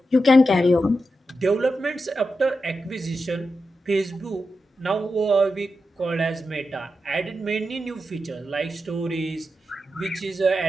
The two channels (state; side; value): normal; both; correlation 0.89